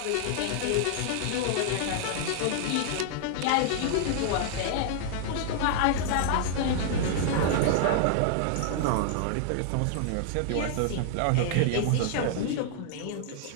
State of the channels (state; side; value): different; both; correlation -0.01